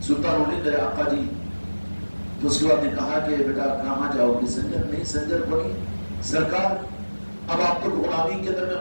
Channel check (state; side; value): inverted; both; correlation -1.00